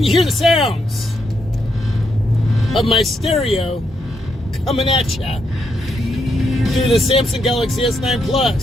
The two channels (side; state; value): both; normal; correlation 0.79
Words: you hear the sounds of my stereo coming at ya through the Samsung Galaxy S9